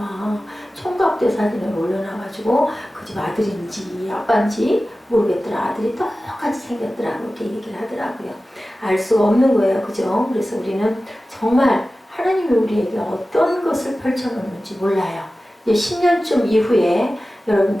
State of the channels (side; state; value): both; normal; correlation 0.95